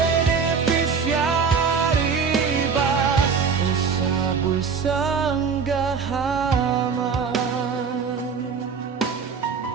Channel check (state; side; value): quieter; left; 5.8 dB